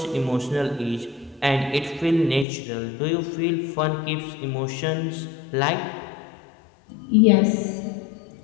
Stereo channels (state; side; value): drops out; right; at 2.5 s